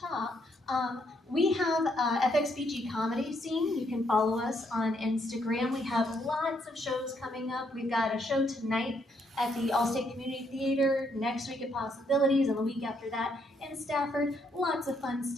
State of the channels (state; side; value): normal; both; correlation 0.73